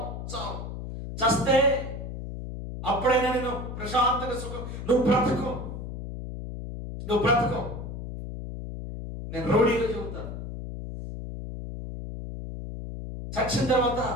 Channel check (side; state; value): left; noise; hum, 8 dB below the sound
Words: చావు. చస్తే అప్పుడైనా నేను ప్రశాంతంగా సుఖం. నువ్వు బ్రతుకు. నేను రౌడీగా చెబుతాను. చచ్చిన తర్వాత